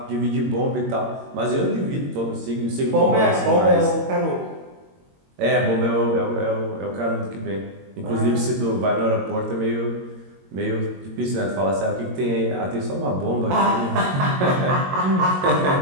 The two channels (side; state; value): left; late; 22 ms